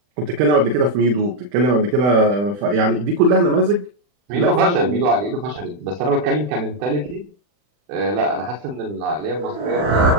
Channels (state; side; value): late; left; 40 ms